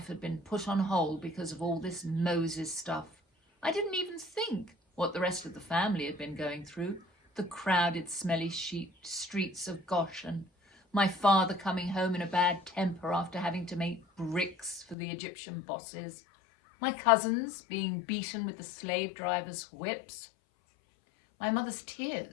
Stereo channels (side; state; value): right; drops out; at 15.0 s